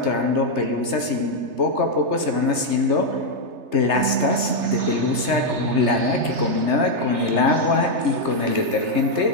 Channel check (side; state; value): left; late; 3.3 ms